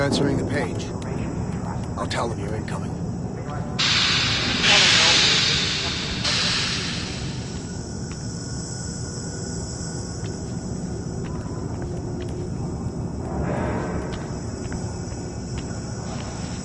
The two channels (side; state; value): both; identical; correlation 1.00